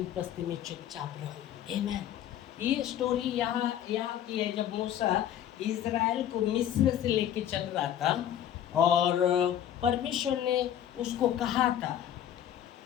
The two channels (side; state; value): right; quieter; 10.7 dB